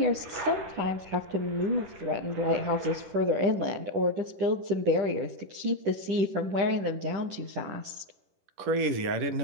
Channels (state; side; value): late; left; 10 ms